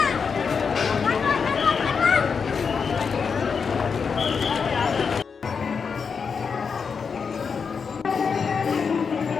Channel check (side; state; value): right; quieter; 5.8 dB